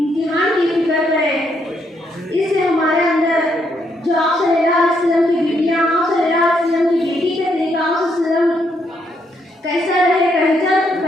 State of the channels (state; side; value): normal; both; correlation 0.75